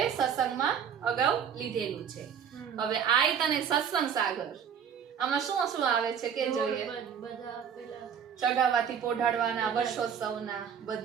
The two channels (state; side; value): quieter; left; 7.7 dB